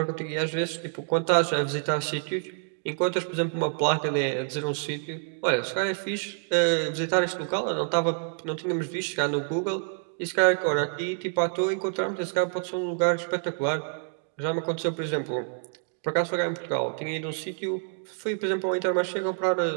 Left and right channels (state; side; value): silent; left; 60 dB below the other